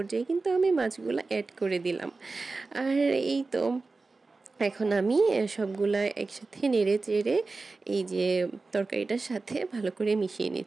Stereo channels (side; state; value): left; quieter; 3.8 dB